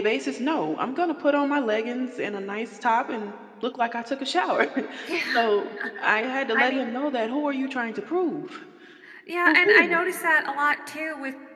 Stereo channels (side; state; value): both; identical; correlation 1.00